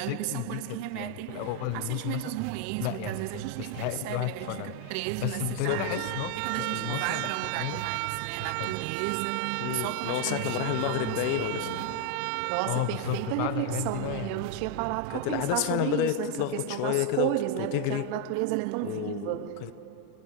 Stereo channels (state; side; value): different; both; correlation 0.00